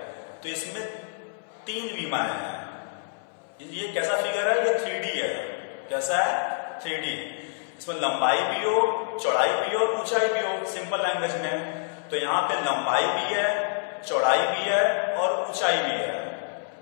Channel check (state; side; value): silent; right; 60 dB below the other